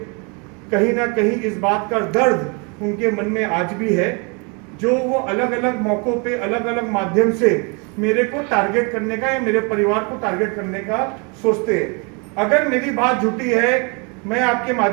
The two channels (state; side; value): quieter; left; 32.8 dB